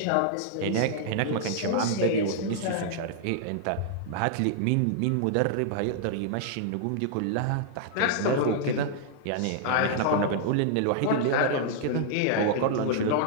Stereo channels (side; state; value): both; different; correlation -0.01